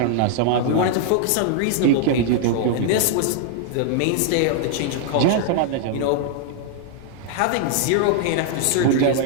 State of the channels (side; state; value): both; different; correlation 0.00